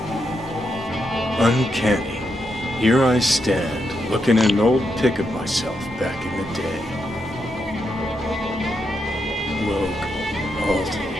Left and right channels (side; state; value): both; normal; correlation 0.82